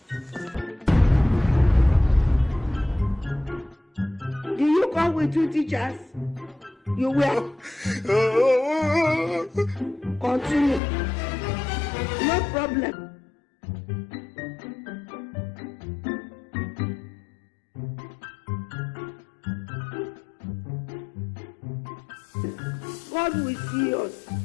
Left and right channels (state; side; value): drops out; right; at 10.8 s